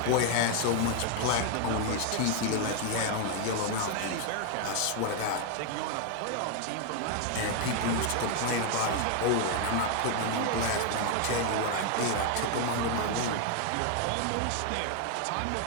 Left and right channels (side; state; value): both; different; correlation 0.00